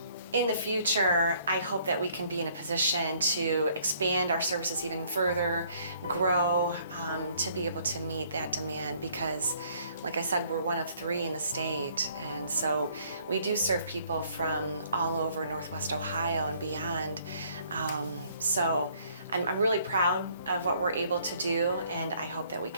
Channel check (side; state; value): both; inverted; correlation -0.62